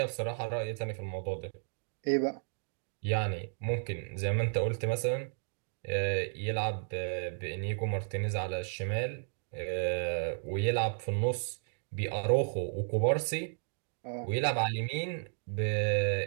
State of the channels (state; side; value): silent; left; digital silence